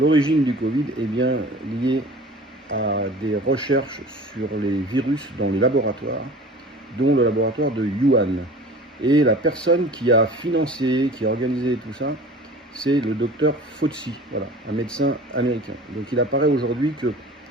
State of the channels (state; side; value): normal; both; correlation 0.41